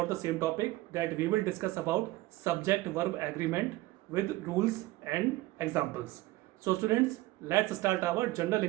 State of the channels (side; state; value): left; quieter; 18.5 dB